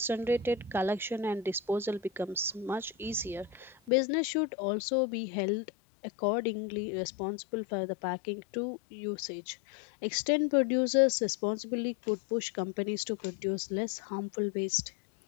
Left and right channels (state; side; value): drops out; right; at 3.9 s